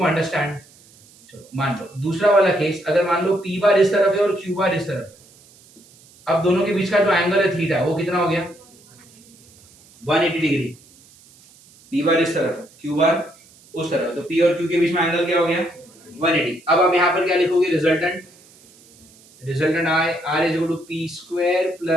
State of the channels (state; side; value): noise; right; hiss, 27 dB below the sound